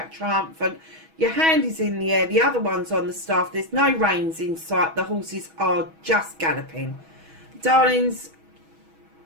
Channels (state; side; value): late; left; 6.2 ms